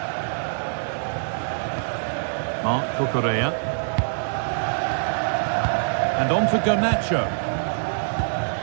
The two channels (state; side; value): silent; left; digital silence